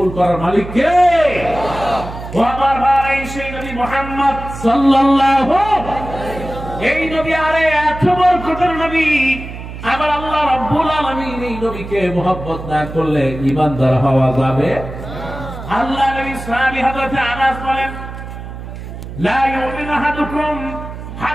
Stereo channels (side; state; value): right; noise; hum, 11 dB below the sound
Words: করার মালিক কে? ও আমার ভাই, সেই নবী মুহাম্মদ সাল্লাল্লাহু এই নবী, আরে এত বরকতের নবী। আবার আল্লাহ রাব্বুল আলামিন এই নবীকে মুহাব্বত না করলে ঈমানদার হওয়া যাবে? আল্লাহ নবী সাহাবী হযরত আনাস বলেন, লা ইউমিনু আহাদুকুম